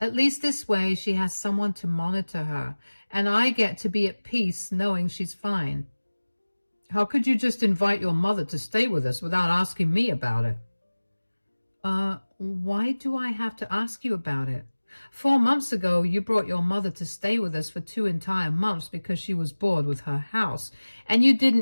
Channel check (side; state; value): both; inverted; correlation -1.00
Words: least this way she has someone to monitor her, and I get to be at peace knowing she's fine. How could you just invite your mother to stay with us without asking me about it? Why do I have to ask you about it? 4 months ago, you brought your mother to stay with us for 2 entire months because she was bored with her house, and you